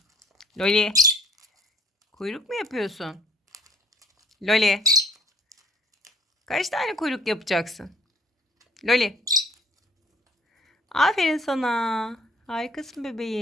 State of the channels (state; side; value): normal; both; correlation 0.57